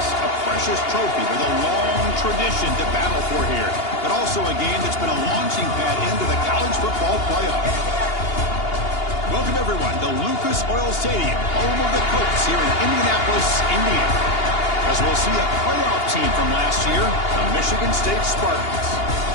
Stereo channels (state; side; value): late; right; 2.8 ms